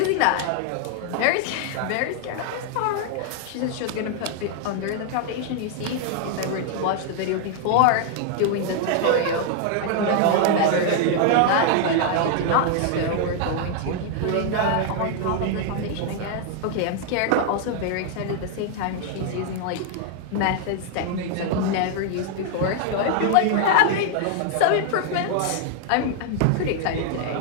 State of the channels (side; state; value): both; different; correlation 0.00